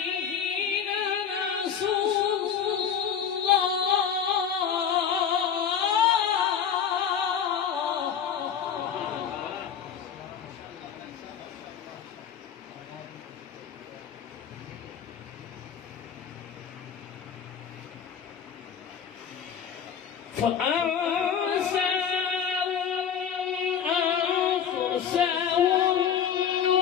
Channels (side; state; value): right; quieter; 7.9 dB